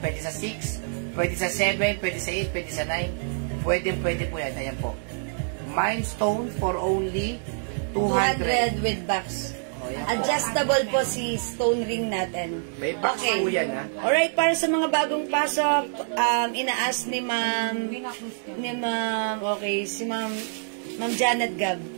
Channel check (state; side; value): silent; left; 61 dB below the other